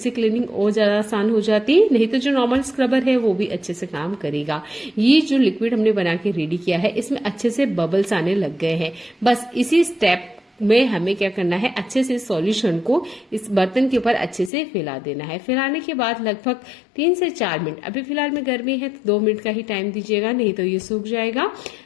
क्लीनिंग और ज्यादा आसान हो जाती है। नहीं तो जो नॉर्मल स्क्रबर है वो भी अच्छे से काम करेगा। ये जो लिक्विड हमने बना के रेडी किया है इसमें अच्छे से बबल्स आने लग गए हैं। बस इसी स्टेप में हमें क्या करना है, अच्छे से सॉल्यूशन को इस बर्तन के ऊपर अच्छे से फैला देना है। फैलाने के बाद लगभग 3 से 4 मिनट, अभी फिलहाल में गर्मी है तो 2 मिनट का ही टाइम दीजिएगा, नहीं तो ये सूख जाएगा।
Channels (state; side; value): drops out; right; at 14.5 s